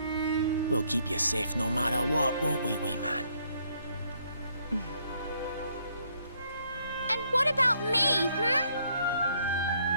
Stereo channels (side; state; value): both; inverted; correlation -0.70